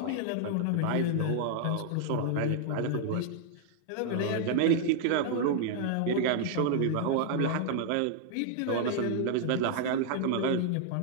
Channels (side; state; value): both; different; correlation -0.01